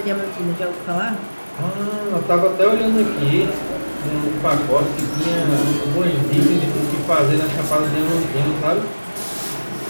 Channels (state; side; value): inverted; both; correlation -1.00